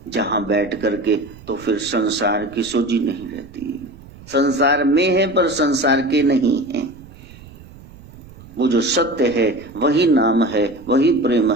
जहां बैठ करके तो फिर संसार की सोची नहीं रहती। संसार में है पर संसार के नहीं है। वो जो सत्य है वही नाम है, वही प्रेम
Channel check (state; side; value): noise; right; rumble, 20 dB below the sound